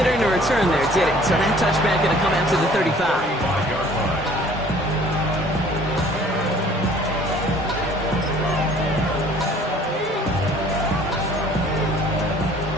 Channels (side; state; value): both; normal; correlation 0.54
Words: a return there, did it? So that touchback going to come out to the 35.